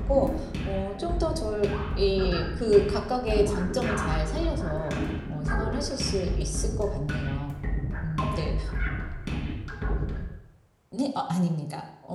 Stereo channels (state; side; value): identical; both; correlation 1.00